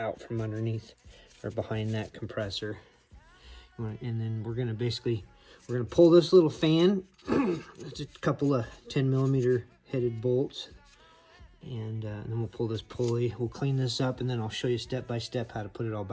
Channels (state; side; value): identical; both; correlation 1.00